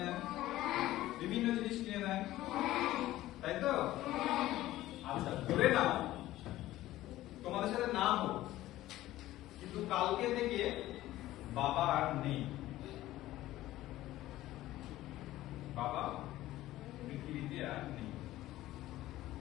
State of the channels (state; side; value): quieter; right; 15.5 dB